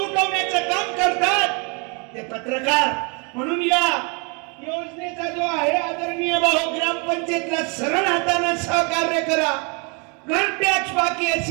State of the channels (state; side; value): quieter; left; 33.6 dB